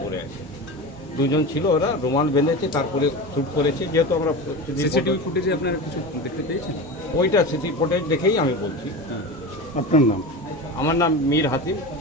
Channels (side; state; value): both; normal; correlation 0.27